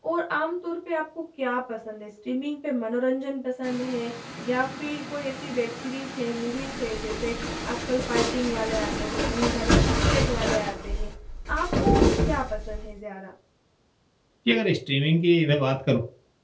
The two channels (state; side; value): identical; both; correlation 1.00